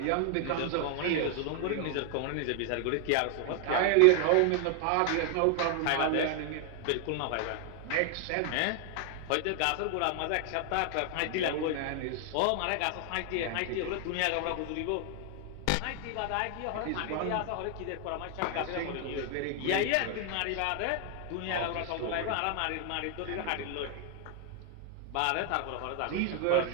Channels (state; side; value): different; both; correlation 0.00